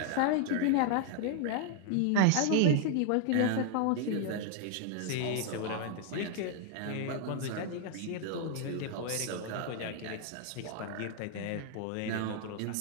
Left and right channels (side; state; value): both; different; correlation 0.00